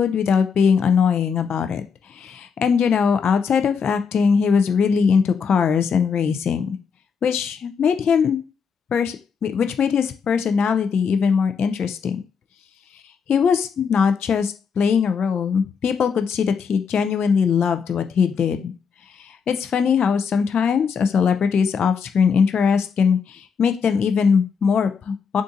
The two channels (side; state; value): right; quieter; 6.2 dB